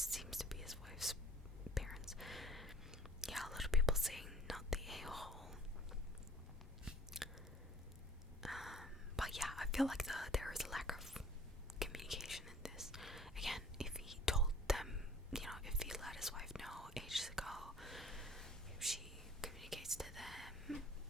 to be his wife's parents. Yeah, a lot of people saying not the a-hole. feel like there is a lack of communication in this. Again, if he told them, if he let his wife know ages ago, if she communicates to them,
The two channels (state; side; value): normal; both; correlation 0.51